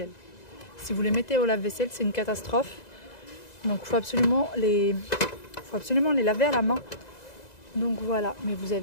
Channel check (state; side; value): late; right; 2.0 ms